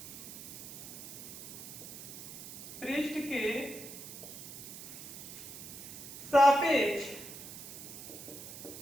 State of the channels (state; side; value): noise; right; hiss, 11 dB below the sound